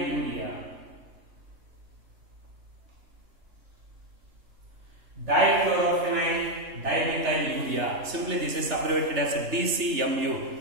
Dichlorophenoyl dimethylurea. Simply this is abbreviated as DCMU.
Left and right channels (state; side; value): late; left; 3.3 ms